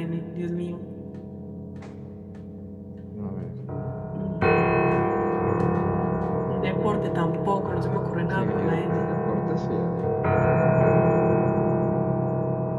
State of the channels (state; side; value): identical; both; correlation 1.00